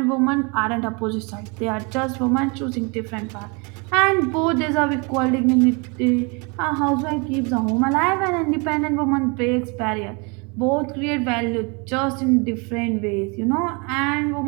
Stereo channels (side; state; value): left; quieter; 31.2 dB